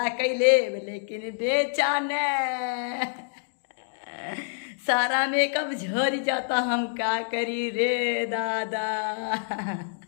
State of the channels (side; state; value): right; silent; digital silence